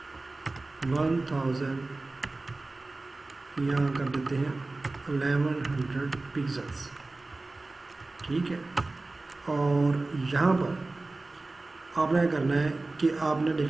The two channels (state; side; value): quieter; left; 3.2 dB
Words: 1000, यहाँ कर देते हैं 1100 पिक्सल्स, ठीक है। और यहाँ पर आपने क्या करना है कि आपने